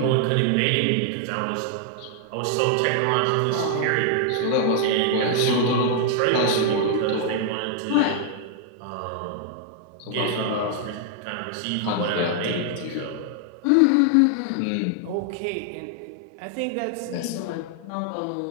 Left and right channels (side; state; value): both; different; correlation 0.00